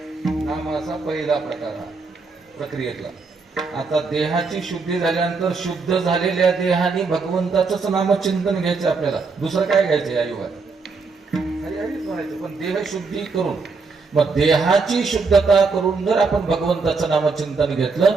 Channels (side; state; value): left; quieter; 4.5 dB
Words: नामाचा पहिला प्रकार हा प्रक्रियेतला. आता देहाची शुद्धी झाल्यानंतर शुद्ध झालेल्या देहाने भगवंताचंच नामचिंतन घ्यायचं आपल्याला, दुसरं काय घ्यायचं या युगात? हरी हरीच म्हणायचं. पण देह शुद्धी करून, मग देहाची शुद्धता करून जर आपण भगवंताचं नामचिंतन घेतलं